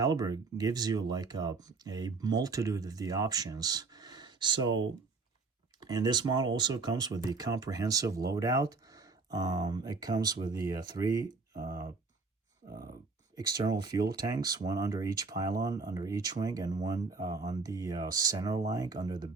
gives you like a multitude of the options. So, and this model also comes with the comprehensive loadout. It comes with the three external fuel tanks, one under each pylon, under each wing, and one on the center line under the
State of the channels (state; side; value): quieter; left; 4.2 dB